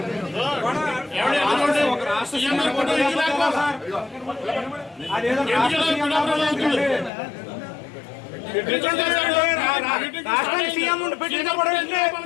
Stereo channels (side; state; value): right; drops out; at 7.1 s